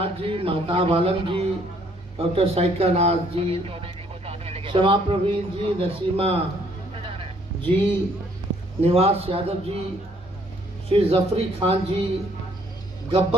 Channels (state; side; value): normal; both; correlation 0.64